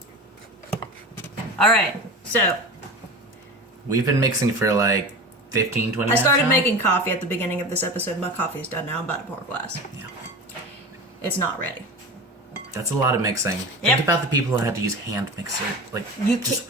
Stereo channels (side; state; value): both; normal; correlation 0.30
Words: All right, so We've been mixing for like 15, 20 minutes I started now? making coffee at the beginning of this episode. My coffee's done now. I'm about to pour a glass. Yeah. It's not ready. That's a lot of mixing. Yep. Think about the people who had to use hand mixer. Like, You just